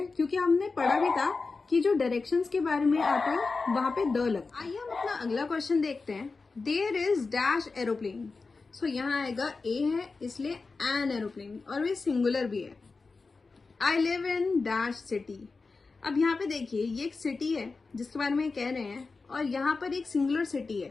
क्योंकि हमने पढ़ा भी था कि जो डायरेक्शंस के बारे में आता है वहां पे द लगता है। आइए हम अपना अगला क्वेश्चन देखते हैं। देयर इज डैश एरोप्लेन, सो यहाँ आएगा ए है इसलिए एन एरोप्लेन, और वे सिंगुलर भी है। I live in dash city, अब यहाँ पे देखिए ये एक सिटी है जिसके बारे में कह रहे हैं, और यहाँ पर एक सिंगुलर सिटी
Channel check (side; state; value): right; quieter; 4.1 dB